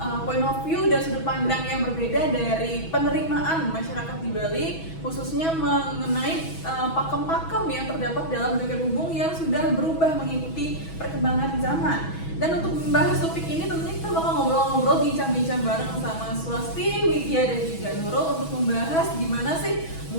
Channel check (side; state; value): right; late; 6.2 ms